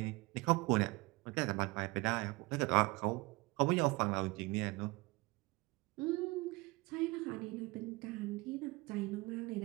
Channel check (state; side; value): quieter; left; 23.7 dB